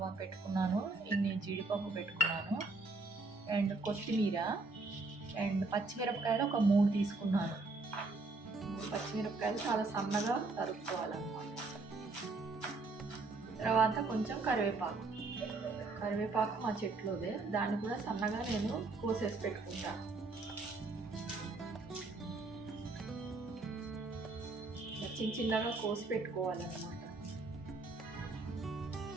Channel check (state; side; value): quieter; left; 3.5 dB